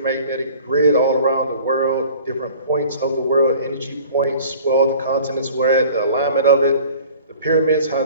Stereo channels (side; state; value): both; inverted; correlation -0.46